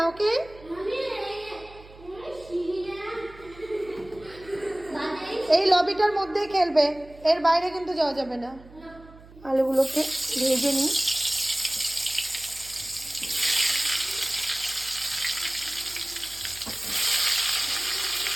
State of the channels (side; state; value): right; noise; hum, 21 dB below the sound